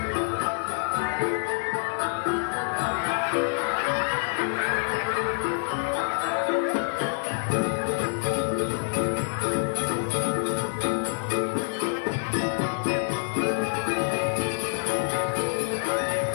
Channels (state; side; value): silent; right; 57 dB below the other